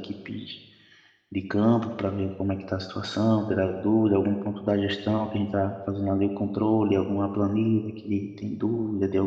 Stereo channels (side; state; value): both; identical; correlation 1.00